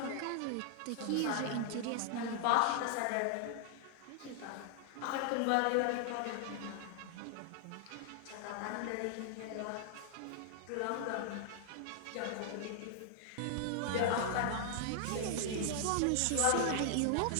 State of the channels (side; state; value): both; different; correlation 0.00